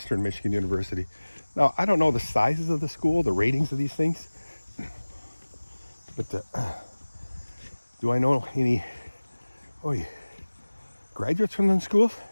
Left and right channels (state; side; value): inverted; both; correlation -1.00